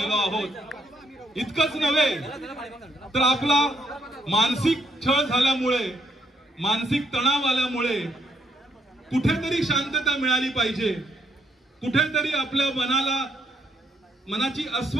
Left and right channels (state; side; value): normal; both; correlation 0.74